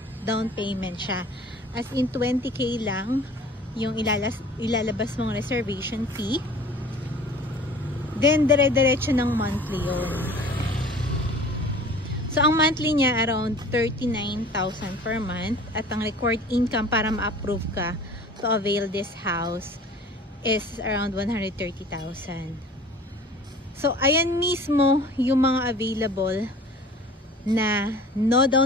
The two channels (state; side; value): normal; both; correlation 0.45